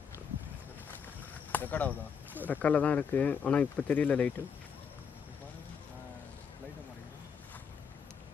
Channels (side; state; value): right; quieter; 6.6 dB